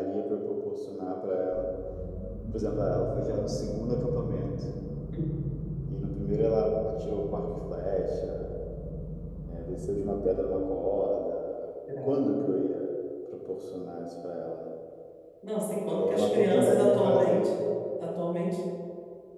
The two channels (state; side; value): identical; both; correlation 1.00